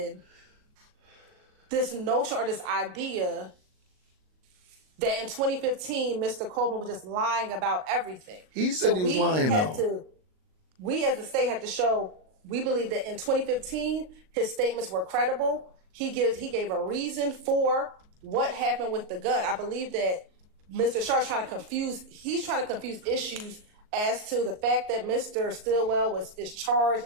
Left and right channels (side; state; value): left; late; 38 ms